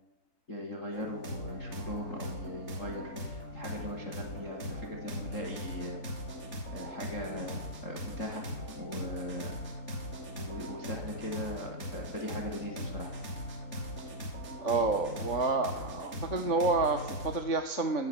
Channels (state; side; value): late; right; 3.4 ms